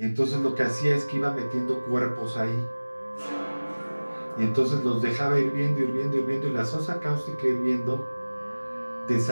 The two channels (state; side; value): inverted; both; correlation -1.00